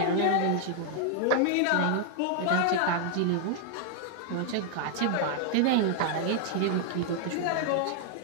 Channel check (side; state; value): both; different; correlation 0.00